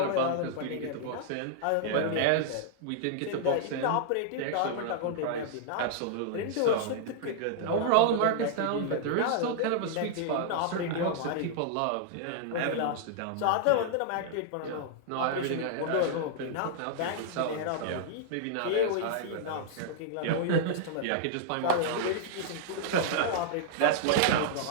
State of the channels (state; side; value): different; both; correlation -0.01